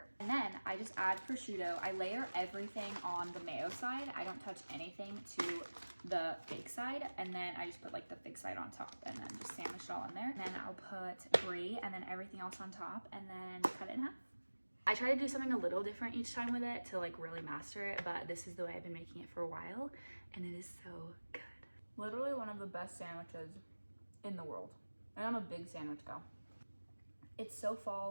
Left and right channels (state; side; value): inverted; both; correlation -1.00